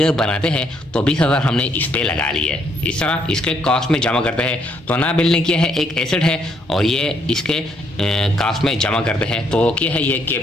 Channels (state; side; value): normal; both; correlation 0.71